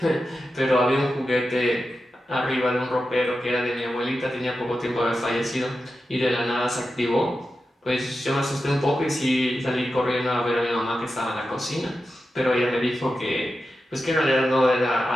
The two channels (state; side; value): normal; both; correlation 0.91